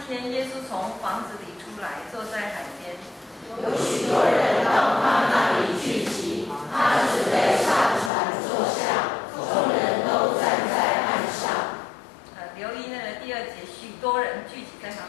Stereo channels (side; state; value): right; drops out; at 8.1 s